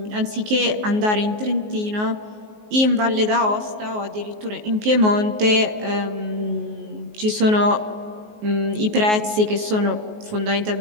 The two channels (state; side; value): late; left; 19 ms